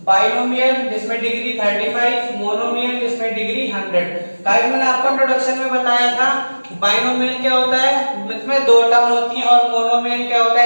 बाइनोमियल जिसमें डिग्री 35, मोनोमियल जिसमें डिग्री 100। गाइस मैंने आपको इंट्रोडक्शन में बताया था बाइनोमियल क्या होता है, जिसमें दो टर्म होती है, और मोनोमियल क्या होता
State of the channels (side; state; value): both; inverted; correlation -1.00